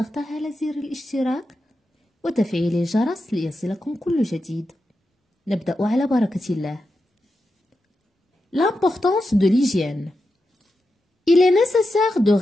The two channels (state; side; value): normal; both; correlation 0.89